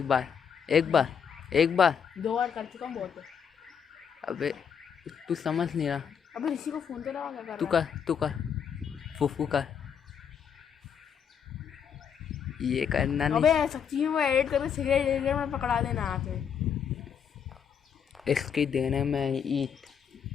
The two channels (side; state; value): right; quieter; 7.5 dB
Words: बार, एक बार, एक बार। 2 बार कर चुका हूँ, बहुत है। अबे तू समझ नहीं रहा। अबे ऋषि को फोन तो लगा, क्या कर तू रहा है? कर, तू कर, फूफू कर। ये करना अबे नहीं। सच्ची में वो एडिट करके सिगरेट ले मैं पकड़ा देना आके, इसकी देने में ईट।